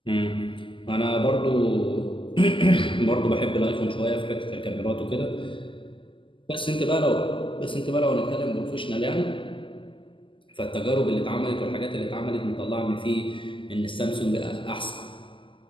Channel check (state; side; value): late; right; 0.25 ms